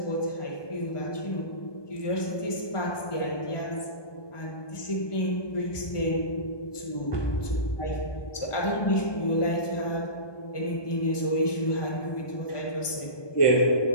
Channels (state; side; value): late; right; 1.2 ms